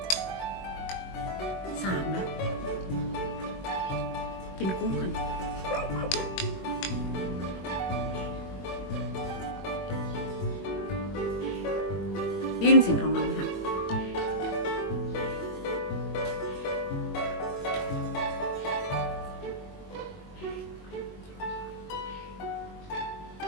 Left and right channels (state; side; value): late; right; 21 ms